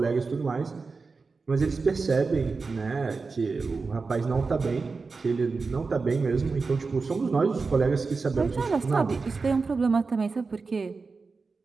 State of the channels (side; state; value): left; quieter; 4.4 dB